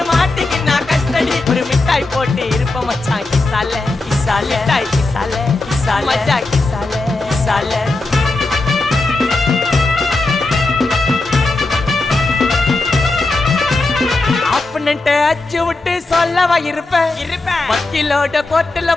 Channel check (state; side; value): quieter; right; 3.1 dB